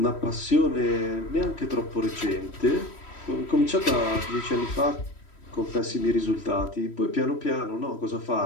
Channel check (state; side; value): late; right; 3.1 ms